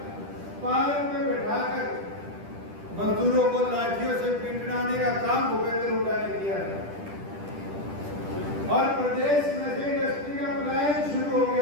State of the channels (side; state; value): left; late; 10 ms